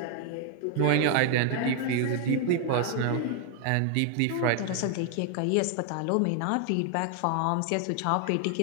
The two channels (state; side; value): different; both; correlation 0.00